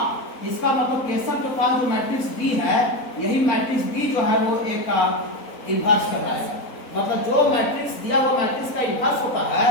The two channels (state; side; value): late; right; 4.0 ms